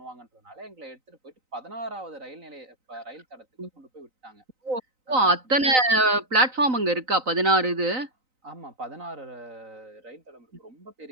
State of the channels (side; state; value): left; late; 3.9 ms